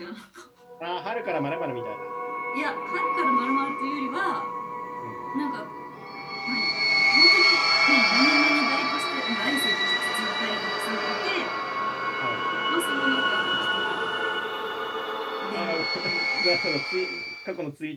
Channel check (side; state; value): both; identical; correlation 1.00